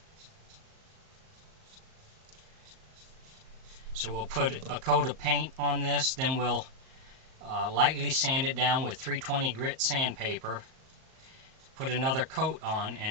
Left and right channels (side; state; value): left; late; 38 ms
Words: So we'll put a coat of paint on this, then we'll lightly sand it down with 320 grit sandpaper, put another coat on,